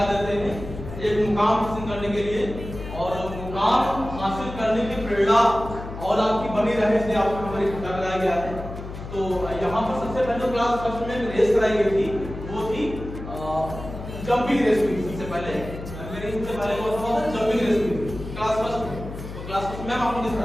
देते हैं एक मुकाम हासिल करने के लिए, और मुकाम हासिल करने की प्रेरणा और आपकी बनी रहे इसलिए आपको हमारी इकट्ठा कराया गया है। तो यहाँ पर सबसे पहले क्लास फर्स्ट में रेस कराई गई थी, वो थी जंपिंग रेस हुई थी। सबसे पहले वो था जंपिंग रेस हुई थी क्लास फर्स्ट में। तो क्लास फर्स्ट में आपको किस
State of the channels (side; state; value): left; noise; hum, 10 dB below the sound